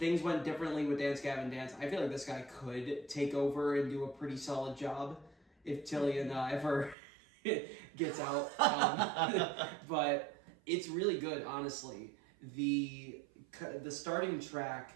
went differently with Dance Gavin Dance, I feel like this guy could take over and do a pretty solid job if Tillian ever gets out. But it's really good, honestly. The starting track,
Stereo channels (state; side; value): drops out; left; at 7.0 s